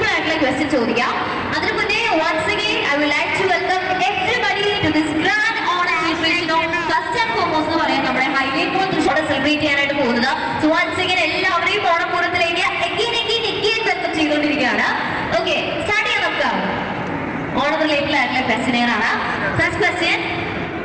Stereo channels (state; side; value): identical; both; correlation 1.00